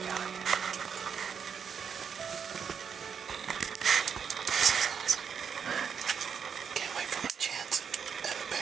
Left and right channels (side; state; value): left; quieter; 7.0 dB